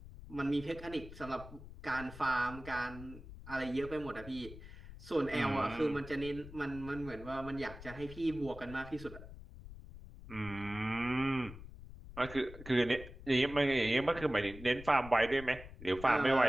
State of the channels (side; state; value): left; noise; rumble, 14 dB below the sound